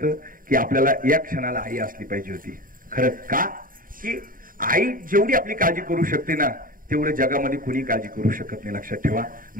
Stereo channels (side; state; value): left; late; 0.41 ms